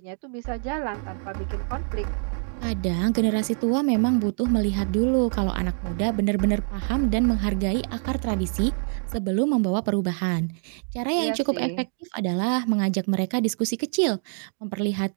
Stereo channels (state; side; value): silent; left; 58 dB below the other